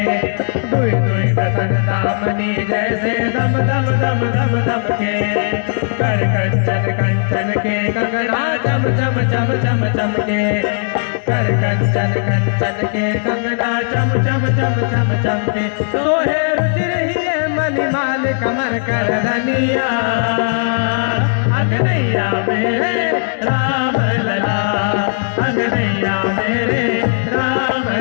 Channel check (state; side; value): silent; right; digital silence